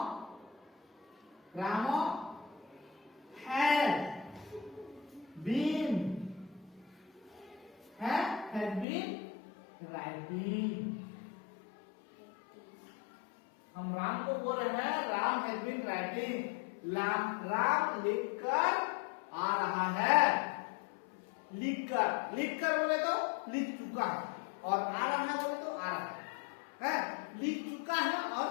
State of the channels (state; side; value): drops out; right; at 8.8 s